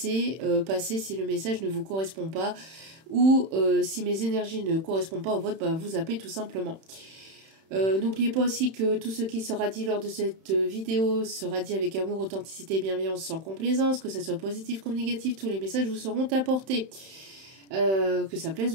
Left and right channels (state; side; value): late; left; 31 ms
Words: passer si le message ne vous correspond pas ou si mes énergies ne correspondent pas au vôtre, vous zappez tout simplement. N'oubliez pas aussi que tout ce qui sera dit lors de cette vidéo sera dit avec amour, authenticité et bienveillance sans complaisance, que ce soit positif comme négatif, tous les messages vous seront apportés. Que ça plaise